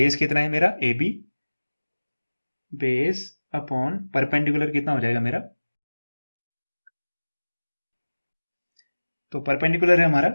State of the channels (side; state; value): both; inverted; correlation -1.00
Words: कितना है मेरा A B, base upon perpendicular कितना हो जाएगा मेरा, तो परपेंडिकुलर है हमारा